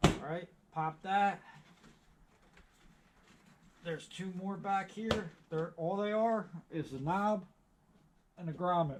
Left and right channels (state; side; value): identical; both; correlation 1.00